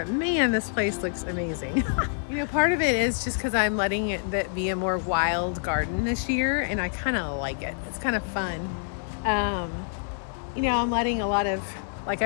man, this place looks amazing. Part of it is just because I'm letting it be a more wild garden this year, and I kind of like it. It's kind of fun. I'm letting a lot of, like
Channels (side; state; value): right; silent; digital silence